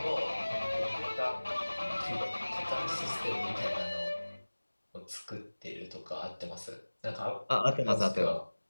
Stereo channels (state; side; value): inverted; both; correlation -1.00